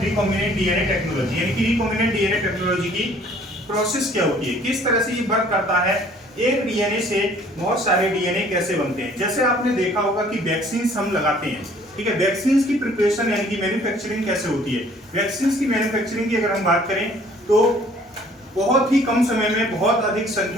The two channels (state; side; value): normal; both; correlation 0.56